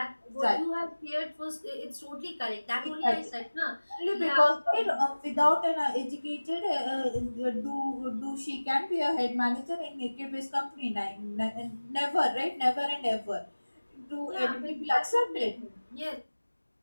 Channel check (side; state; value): both; inverted; correlation -1.00